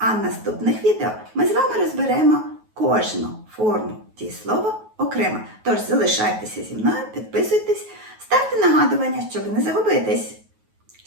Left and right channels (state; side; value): late; left; 9.3 ms